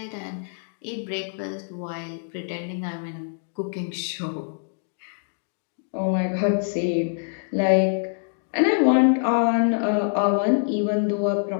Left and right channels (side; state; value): right; silent; digital silence